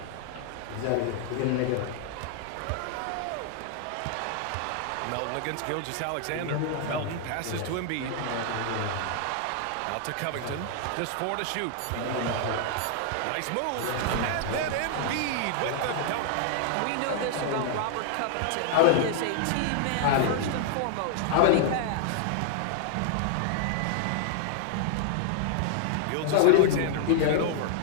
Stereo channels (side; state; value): both; different; correlation -0.01